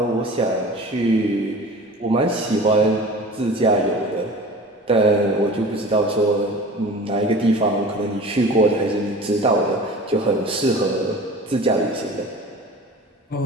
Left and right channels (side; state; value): both; normal; correlation 0.40